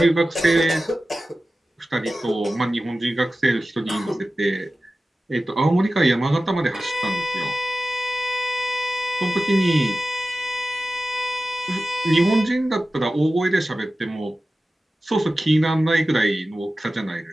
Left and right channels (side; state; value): both; normal; correlation 0.95